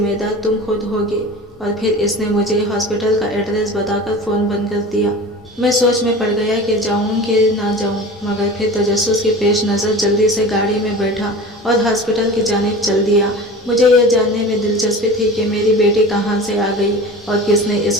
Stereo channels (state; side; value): normal; both; correlation 0.36